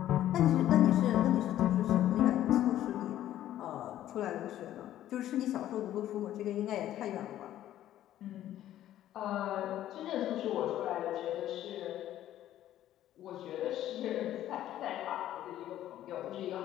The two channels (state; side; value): quieter; right; 12.6 dB